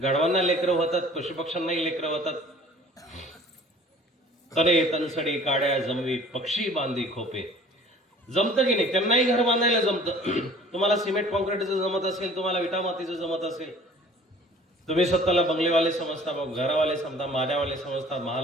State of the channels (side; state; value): both; normal; correlation 0.50